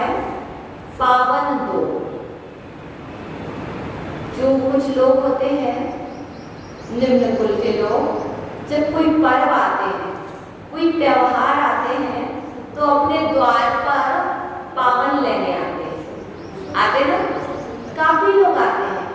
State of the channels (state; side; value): identical; both; correlation 1.00